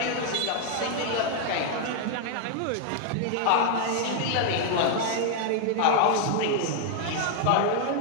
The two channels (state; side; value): different; both; correlation 0.00